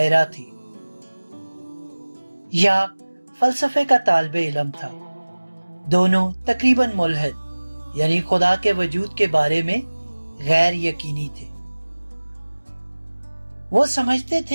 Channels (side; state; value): both; inverted; correlation -1.00